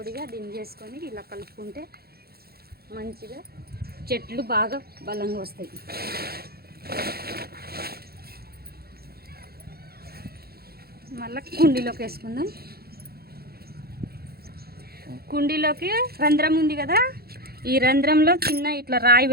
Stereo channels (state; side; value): late; left; 0.45 ms